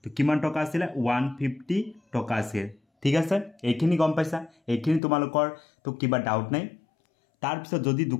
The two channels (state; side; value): drops out; right; at 5.0 s